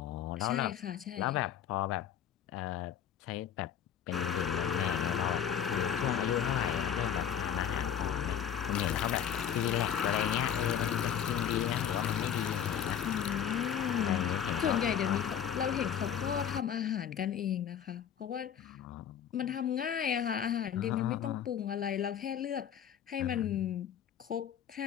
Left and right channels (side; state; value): right; quieter; 9.0 dB